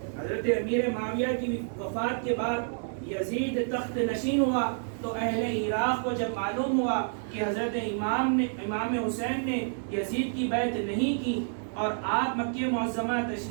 حضرت امیر معاویہ کی وفات کے بعد یزید تخت نشین ہوا تو اہل عراق کو جب معلوم ہوا کہ حضرت امام حسین نے یزید کی بیعت نہیں کی اور آپ مکہ معظمہ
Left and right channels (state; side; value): silent; left; digital silence